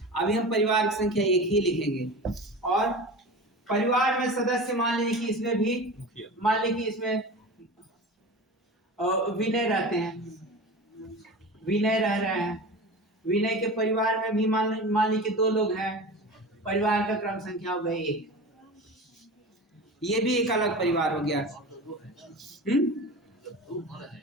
अभी हम परिवार की संख्या 1 ही लिखेंगे। और परिवार में सदस्य मान लीजिए कि इसमें भी, मान लीजिए कि इसमें विनय रहते हैं, विनय रह रहे हैं। विनय के परिवार में भी मान लीजिए कि 2 लोग हैं, परिवार का क्रम संख्या हो गई 1। ये भी एक अलग परिवार हो गया।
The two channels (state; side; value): normal; both; correlation 0.32